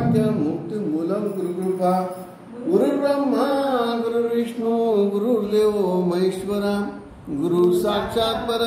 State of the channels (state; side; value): identical; both; correlation 1.00